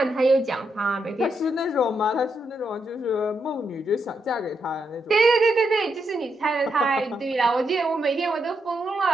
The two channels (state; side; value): normal; both; correlation 0.81